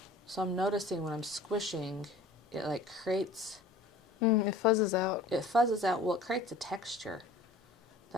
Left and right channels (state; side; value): quieter; right; 3.1 dB